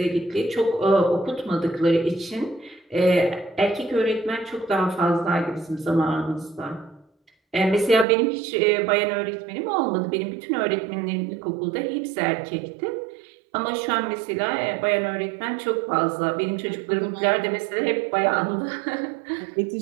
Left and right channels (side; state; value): left; drops out; at 8.1 s